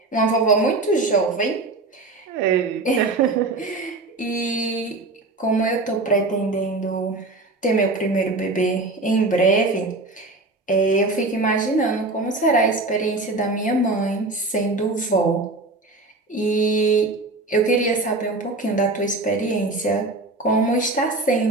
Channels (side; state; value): left; quieter; 3.2 dB